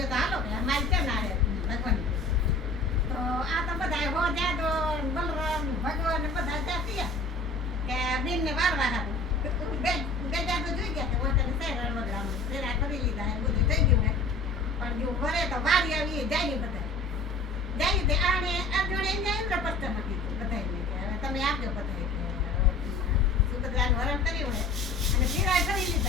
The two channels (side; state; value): right; quieter; 3.2 dB